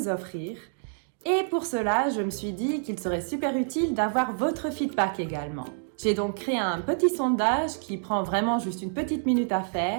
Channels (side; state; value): left; silent; digital silence